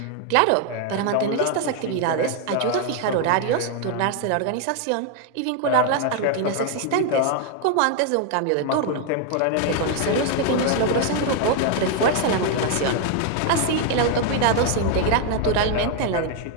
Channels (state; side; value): different; both; correlation 0.00